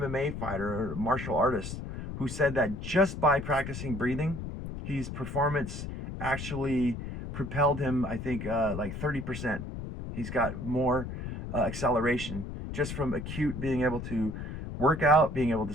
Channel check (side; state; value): left; noise; rumble, 7 dB below the sound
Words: fighter or a martial artist who said that just by practicing breathing, his performance actually propelled him, I think, like 30%. He's got more acceleration just from acute being able to work out, being able to